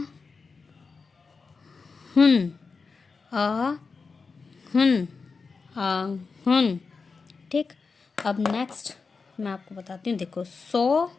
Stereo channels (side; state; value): right; quieter; 4.7 dB